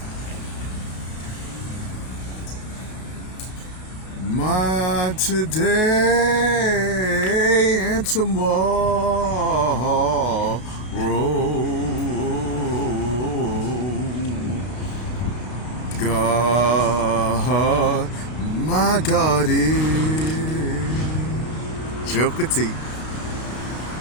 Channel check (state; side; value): late; right; 32 ms